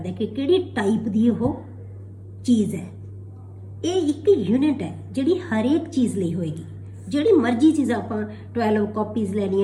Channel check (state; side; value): identical; both; correlation 1.00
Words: है कि किहड़ी टाइप की वो चीज़ है। ये एक यूनिट है जिहड़ी हर एक चीज़ लई होएगी। जिहड़ी मर्जी चीज़ आपां 12 कॉपीज़